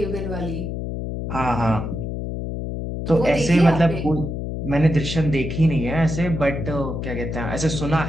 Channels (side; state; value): left; noise; hum, 5 dB below the sound